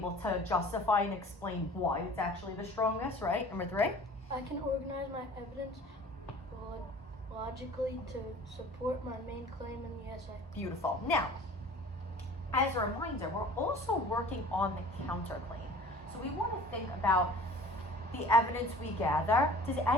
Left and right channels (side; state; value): both; normal; correlation 0.46